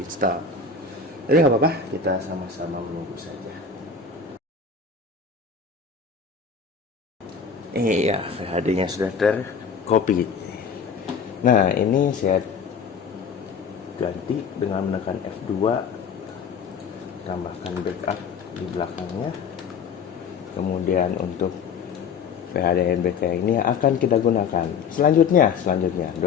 Jadi nggak apa-apa, kita sama-sama menunggu saja. Iya, VHD-nya sudah tercopy. Nah, ini saya ganti dengan menekan F2, tambahkan backup di belakangnya. Kemudian untuk VHD ANBK ini akan kita gunakan. Selanjutnya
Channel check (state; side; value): quieter; right; 5.6 dB